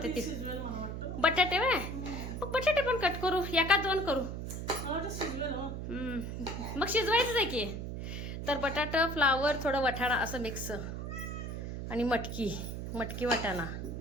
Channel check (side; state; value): right; noise; hum, 6 dB below the sound